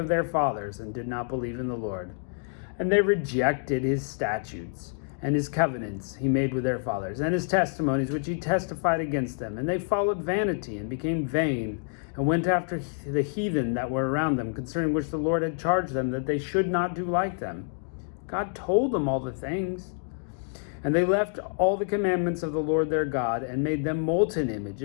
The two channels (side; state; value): right; silent; 60 dB below the other